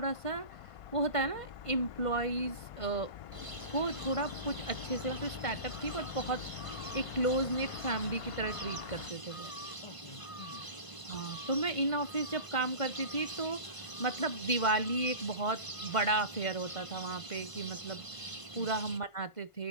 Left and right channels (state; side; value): late; right; 1.5 ms